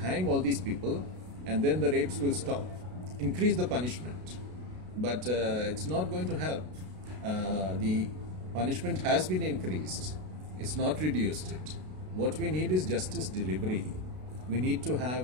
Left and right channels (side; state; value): left; late; 33 ms